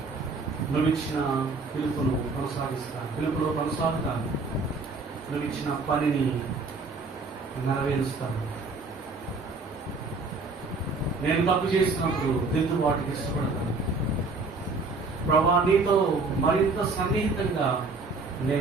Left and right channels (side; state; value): left; quieter; 3.8 dB